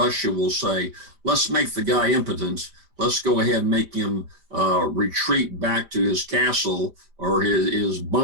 will say, let's make the guy impotent. Let's go ahead and make him retreat back to his castle or his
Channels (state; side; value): late; left; 5.0 ms